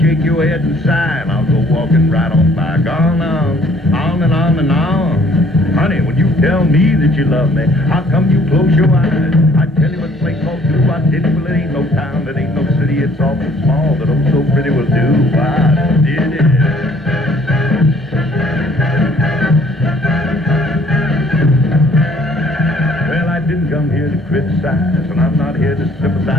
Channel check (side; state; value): both; normal; correlation 0.59